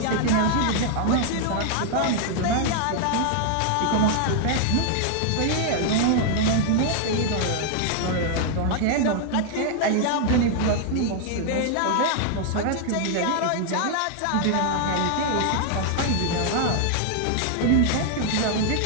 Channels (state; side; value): different; both; correlation 0.00